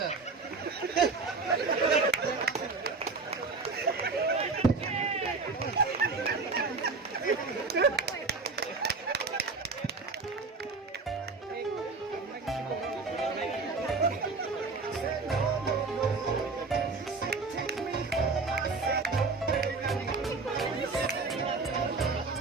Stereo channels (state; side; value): quieter; left; 4.1 dB